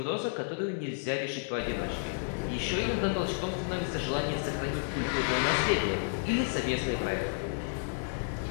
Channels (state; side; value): silent; right; 57 dB below the other